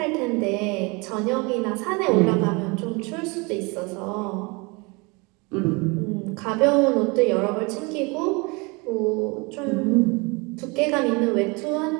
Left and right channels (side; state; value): left; quieter; 28.1 dB